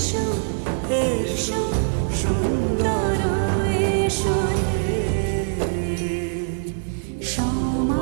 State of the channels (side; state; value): left; silent; digital silence